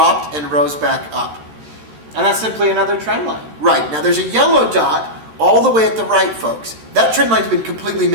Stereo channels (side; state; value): left; late; 13 ms